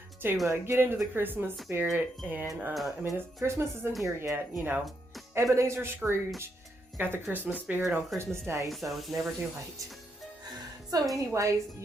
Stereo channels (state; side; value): normal; both; correlation 0.80